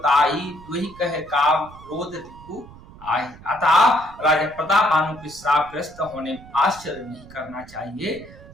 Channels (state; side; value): noise; right; rumble, 20 dB below the sound